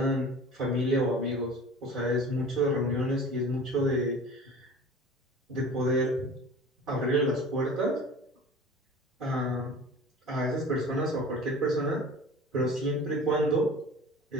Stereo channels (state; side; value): normal; both; correlation 0.40